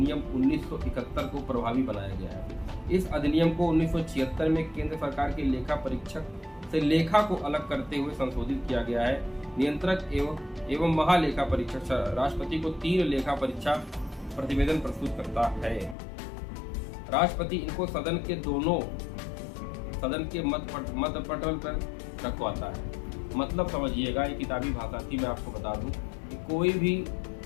1971 को प्रभावी बनाया गया है। इस अधिनियम को 1976 में केंद्र सरकार के लेखा परीक्षक से लेखा को अलग करते हुए संशोधित किया गया है। नियंत्रक एवं महालेखा परीक्षक राष्ट्रपति को 3 लेखा परीक्षा प्रतिवेदन प्रस्तुत करता है। राष्ट्रपति इनको सदन के मत पटल पर रखवाता है। मतलब समझिएगा, ये किताबी भाषा थी, मैं आपको बता दूं कि कोई भी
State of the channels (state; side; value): drops out; right; at 16.0 s